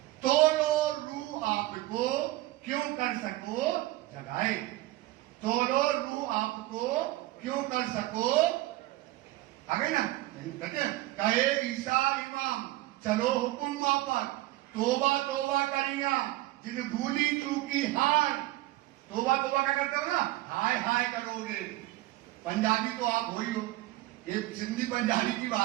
तोड़ो रू आपको क्यों कर सको जगाए, तोड़ो रू आपको क्यों कर सको। आ गई ना? नहीं कहते, कहे ईसा इमाम चलो हुक्म वापस, तोबा तोबा करेंगा जिन भूली चूकी हार। तोबा तोबा क्या करते हो ना, हाय हाय करोगे। पंजाबी तो आप हो ही हो, ये सिंधी पंजाबी की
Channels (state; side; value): quieter; left; 17.5 dB